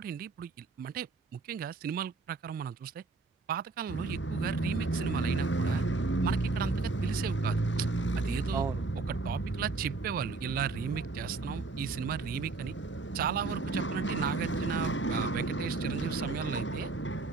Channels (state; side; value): quieter; left; 3.9 dB